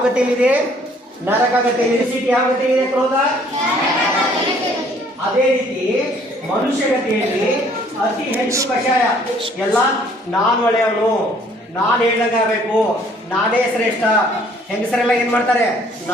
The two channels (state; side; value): normal; both; correlation 0.60